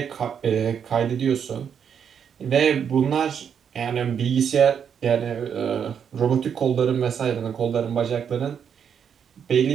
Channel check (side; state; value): left; quieter; 7.7 dB